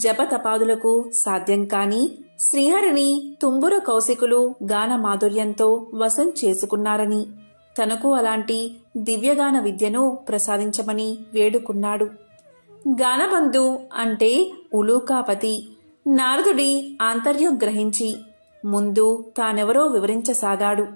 సాధ్యం కాని శ్రీహరిని తుంబుర కౌశికులు గాన మాధుర్యంతో వశం చేసుకున్నారని, తనకు అలాంటి దివ్యగాన విద్యను ప్రసాదించమని వేడుకున్నాడు. గానబంధు అంటే ఉలూకాపతి. నారదుడి ఆంతర్యం గ్రహించి ముందు తానెవరో వివరించసాగాడు.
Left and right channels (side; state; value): both; inverted; correlation -1.00